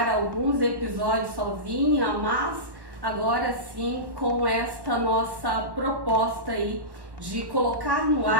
alguns episódios sozinha, mas agora sim com esta nossa proposta aí de colocar no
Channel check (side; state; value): left; late; 1.1 ms